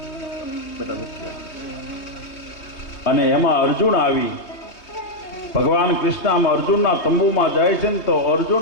અને એમાં અર્જુન આવી ભગવાન કૃષ્ણ આમ અર્જુનના તંબુમાં જાય છે ને તો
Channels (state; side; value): late; right; 3.2 ms